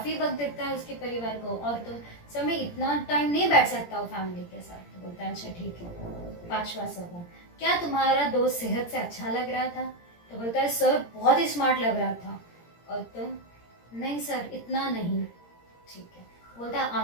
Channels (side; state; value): right; late; 17 ms